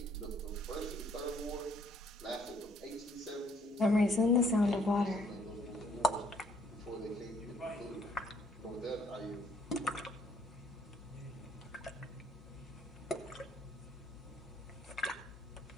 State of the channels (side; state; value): both; normal; correlation 0.65